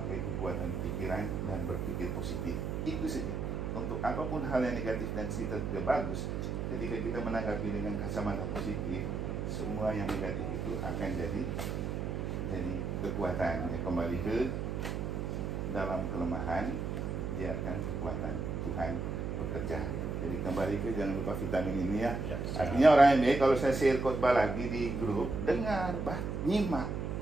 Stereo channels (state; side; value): noise; right; hum, 2 dB below the sound